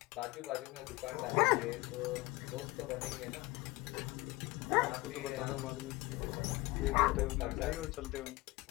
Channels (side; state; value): right; quieter; 21.1 dB